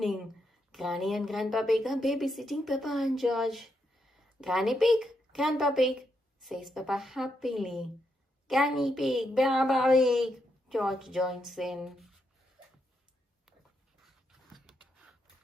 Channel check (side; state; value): both; normal; correlation 0.81